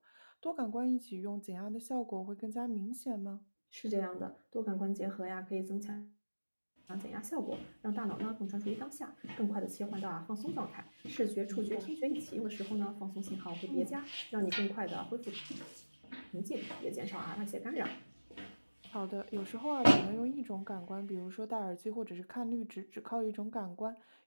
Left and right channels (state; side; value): inverted; both; correlation -1.00